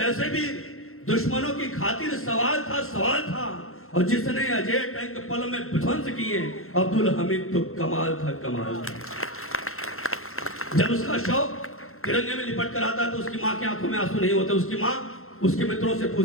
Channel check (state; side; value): late; right; 0.62 ms